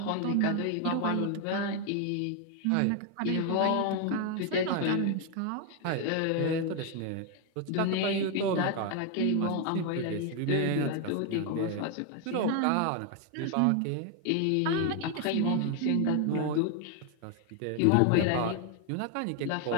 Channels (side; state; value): both; different; correlation 0.01